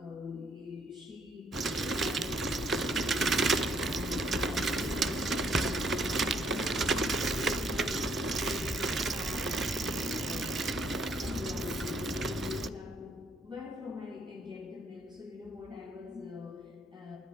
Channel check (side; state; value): both; normal; correlation 0.68